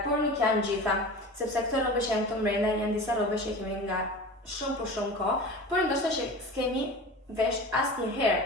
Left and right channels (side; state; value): both; normal; correlation 0.33